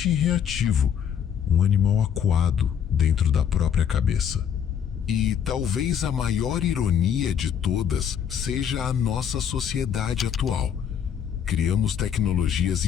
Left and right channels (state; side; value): quieter; right; 8.4 dB